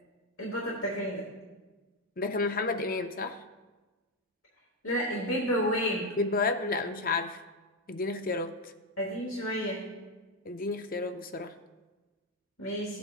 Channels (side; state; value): both; normal; correlation 0.06